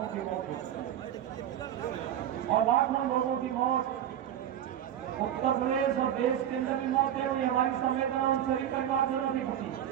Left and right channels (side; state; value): left; quieter; 10.6 dB